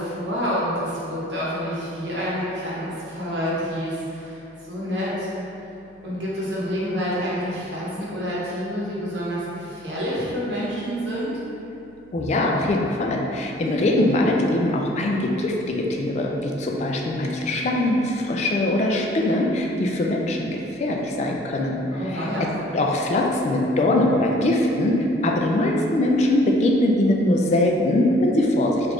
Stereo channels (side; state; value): left; noise; hum, 29 dB below the sound